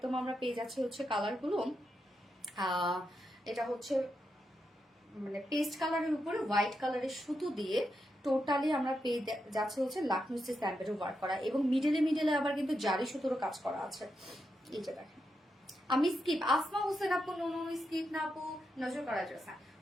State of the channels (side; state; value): both; normal; correlation 0.85